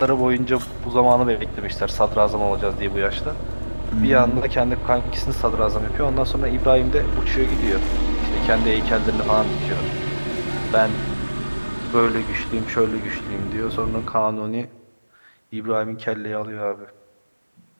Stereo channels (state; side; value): inverted; both; correlation -1.00